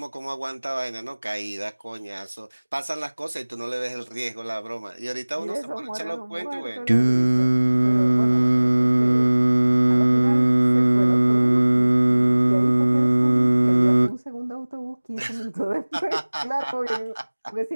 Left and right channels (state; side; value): inverted; both; correlation -1.00